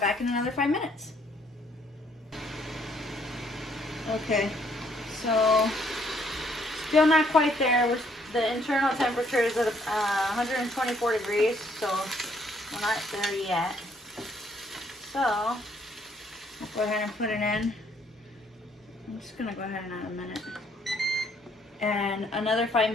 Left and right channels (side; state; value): both; normal; correlation 0.66